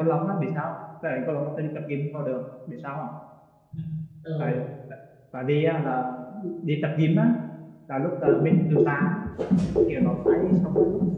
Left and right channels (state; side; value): identical; both; correlation 1.00